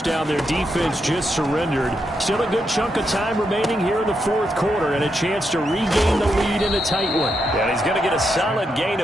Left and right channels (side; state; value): both; normal; correlation 0.82